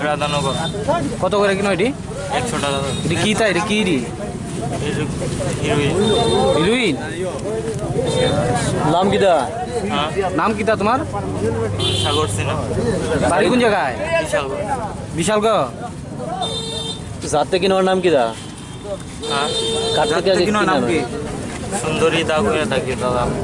রাধানগর কত করে কিনো এটি? 100 টাকা। এটি কি তাই এটি কি হিরোইন? নাম কিতা? নাম কিতা তোমার? সাগর সিনহা। বাড়ি কোন জায়গায়? বিশালগড়। जाते की नाम किदा জাতটা কিনো নাম কি? সুন্দরী দা করে থাকি দাদা।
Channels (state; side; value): identical; both; correlation 1.00